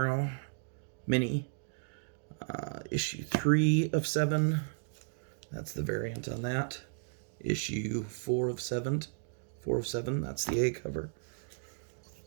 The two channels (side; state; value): left; silent; digital silence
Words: mini. Issue 3 of 7. That's the variant on that. Issue 4 of 7. 4 of 7. That's the A cover.